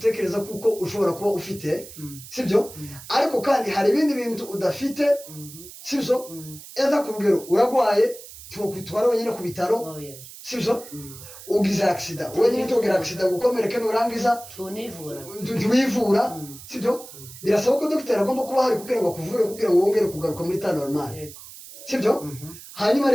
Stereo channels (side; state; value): right; noise; hiss, 16 dB below the sound